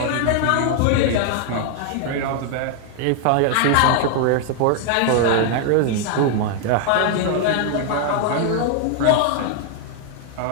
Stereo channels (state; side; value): different; both; correlation 0.00